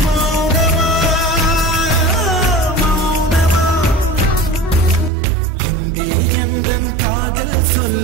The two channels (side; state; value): left; drops out; at 5.1 s